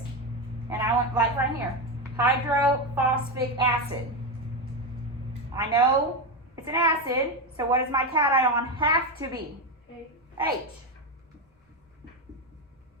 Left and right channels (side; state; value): both; normal; correlation 0.12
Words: and I went like right here, hydrophosphic acid. I know it's an acid, so what does my cation have to be? H.